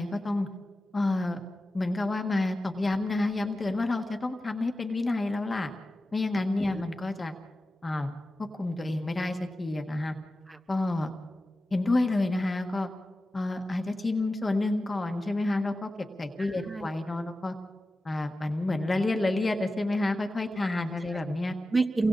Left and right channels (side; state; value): both; normal; correlation 0.94